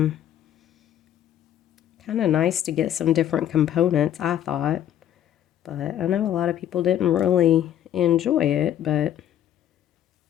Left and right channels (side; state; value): right; quieter; 11.1 dB